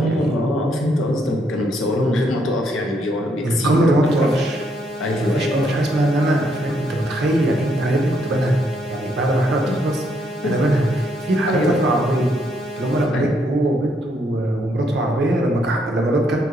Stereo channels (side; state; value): both; normal; correlation 0.73